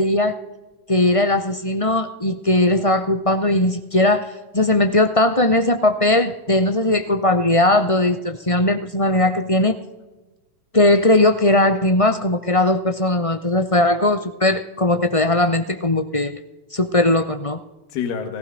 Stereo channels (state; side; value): late; right; 1.6 ms